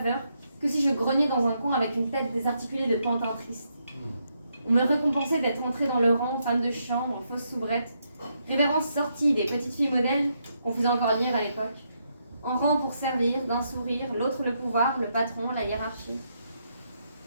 que si je grognais dans un coin avec une tête désarticulée de pantin triste. On me récompensait d'être entrée dans le rang, femme de chambre, en fausse soubrette, révérence sortie des petites filles modèles qu'on faisait encore lire à l'époque, en rang pour servir, d'un sourire, l'autre le pouvoir, le patron, la hiérarchie.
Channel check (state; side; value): inverted; both; correlation -0.79